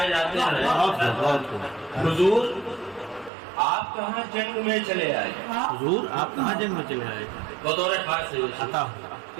جاتے ہیں. حضور آپ کہاں جنگ میں چلے آئے؟ حضور آپ کہاں جنگ میں چلے آئے؟ بطور خاص سے عطا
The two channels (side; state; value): left; drops out; at 3.3 s